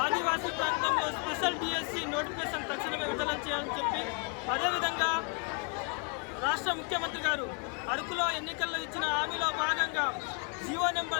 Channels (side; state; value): right; quieter; 35.3 dB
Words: ఆదివాసీ ప్రాంతంలో స్పెషల్ డిఎస్సి నోటిఫికేషన్ తక్షణమే విడుదల చేయాలని చెప్పి, అదేవిధంగా రాష్ట్ర ముఖ్యమంత్రి గారు అరకులో ఎన్నికల్లో ఇచ్చిన హామీలో భాగంగా జీవో